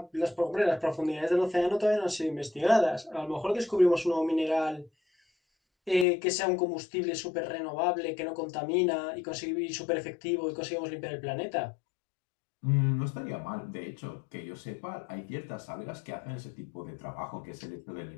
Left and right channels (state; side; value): drops out; right; at 6.1 s